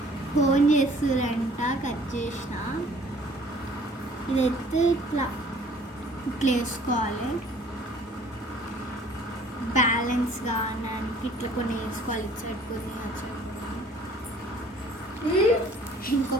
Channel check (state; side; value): normal; both; correlation 0.54